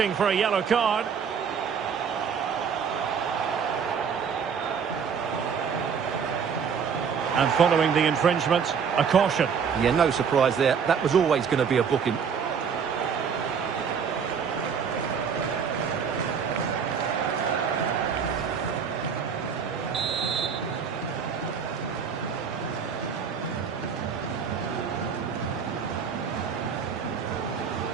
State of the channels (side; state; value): left; quieter; 6.7 dB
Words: for a yellow card. And following the infringement, a caution. Yeah, no surprise there. That was always going to be a booking.